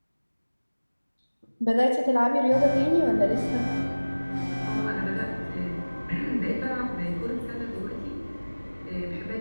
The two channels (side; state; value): both; inverted; correlation -1.00